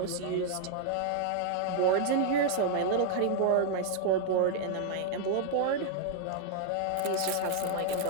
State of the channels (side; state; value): both; different; correlation 0.00